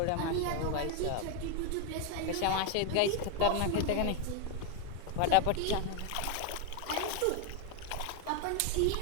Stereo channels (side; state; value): both; different; correlation 0.01